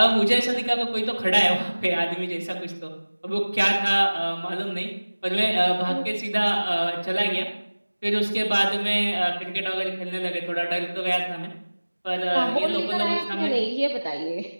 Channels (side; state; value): both; inverted; correlation -1.00